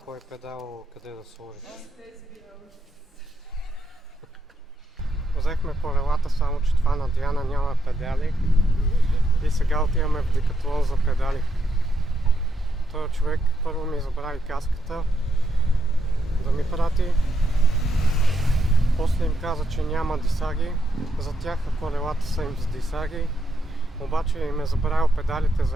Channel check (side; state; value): both; normal; correlation 0.81